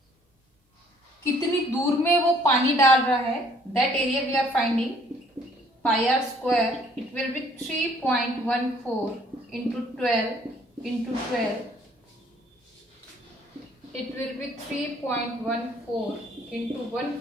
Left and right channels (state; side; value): normal; both; correlation 0.61